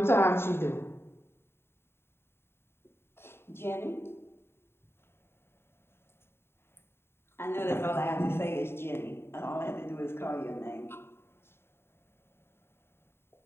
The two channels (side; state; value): right; late; 0.11 ms